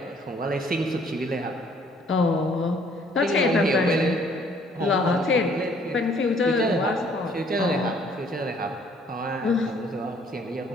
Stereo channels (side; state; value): both; normal; correlation 0.61